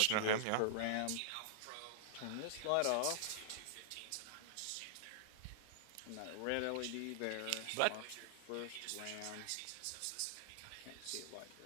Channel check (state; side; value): different; both; correlation -0.01